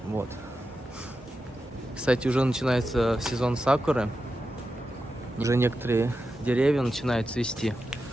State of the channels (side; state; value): both; normal; correlation 0.90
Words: Вот. Кстати, уже начинается сезон сакуры. Уже некоторые деревья начинают цвести.